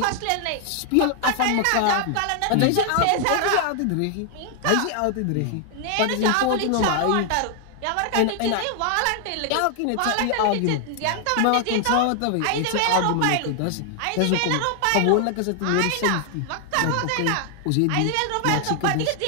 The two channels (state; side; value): different; both; correlation 0.00